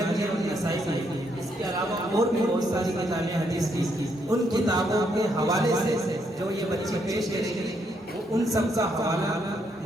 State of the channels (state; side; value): normal; both; correlation 0.75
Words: भी है और नसाई भी है। इसके अलावा और भी बहुत सारी किताबें हदीस की, उन किताबों के हवाले से जो ये बच्चे पेश करेंगे वो उन सब का हवाला